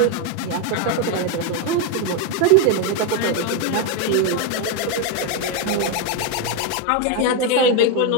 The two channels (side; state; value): both; different; correlation 0.02